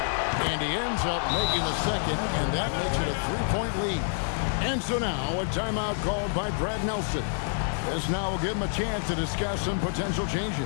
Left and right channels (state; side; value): silent; right; digital silence